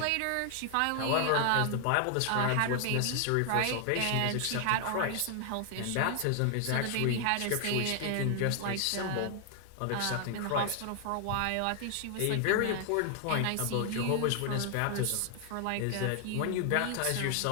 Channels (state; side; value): different; both; correlation 0.00